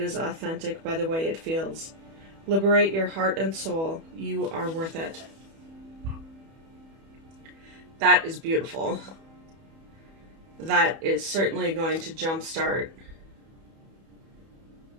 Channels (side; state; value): left; late; 31 ms